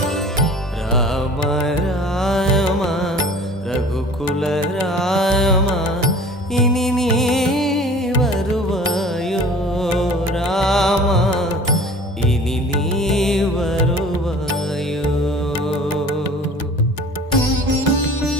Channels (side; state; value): both; normal; correlation 0.45